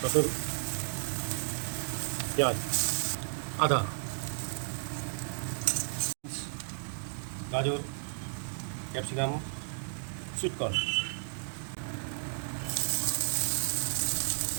রসুন, পেঁয়াজ, আদা, গাজর, ক্যাপসিকাম, সুইটকর্ন।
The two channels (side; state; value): left; silent; digital silence